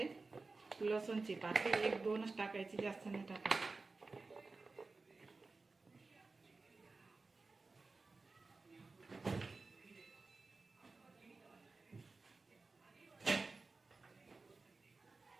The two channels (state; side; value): quieter; left; 3.8 dB